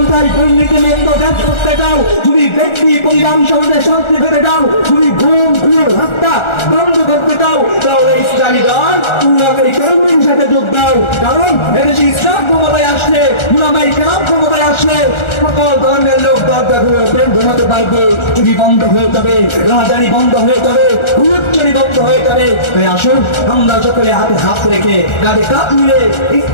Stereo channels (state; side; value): late; right; 1.4 ms